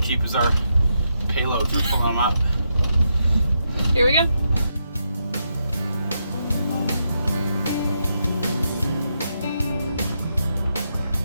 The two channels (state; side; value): inverted; both; correlation -0.82